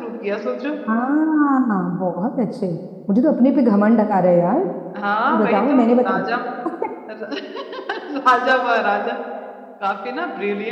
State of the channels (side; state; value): both; identical; correlation 1.00